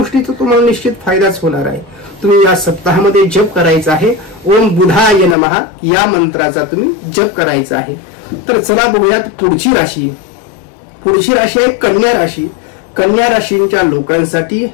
तुम्हाला निश्चित फायदाच होणार आहे। तुम्ही या सप्ताहामध्ये जप करायचा आहे ओम बुधाय नमः या मंत्राचा तुम्ही जप करायचा आहे। तर चला बघूयात पुढची राशी। पुढची राशी आहे कन्या राशी। कन्या राशींच्या लोकांसाठी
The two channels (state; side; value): drops out; right; at 5.4 s